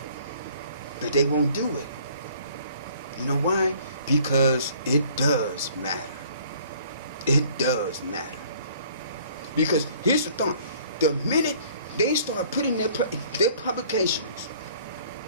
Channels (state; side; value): inverted; both; correlation -0.55